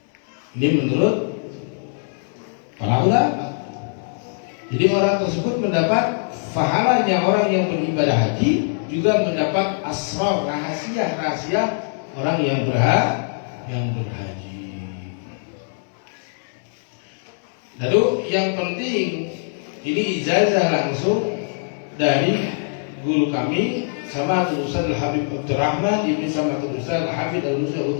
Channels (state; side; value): silent; right; 64 dB below the other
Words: Ini menurut para ulama. Jadi orang tersebut mendapat pahalanya orang yang beribadah haji, juga mendapat asrar, rahasia-rahasia orang yang berhaji. Lalu yang penting ini ijazah langsung dari guru kami Sama'atul Ustaz Al-Habib Abdurrahman Ibn Sama'atul Ustaz Al-Habib Al-Musa